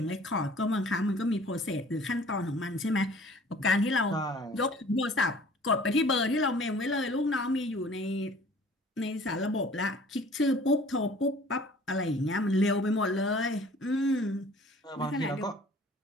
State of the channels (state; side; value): normal; both; correlation 0.50